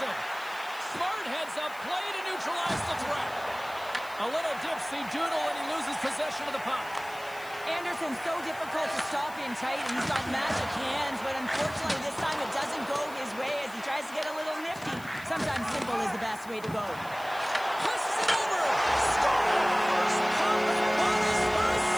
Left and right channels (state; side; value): noise; left; hiss, 20 dB below the sound